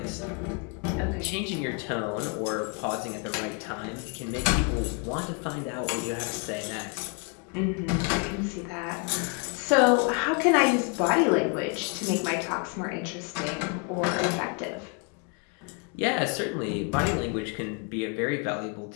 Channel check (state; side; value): quieter; right; 35.1 dB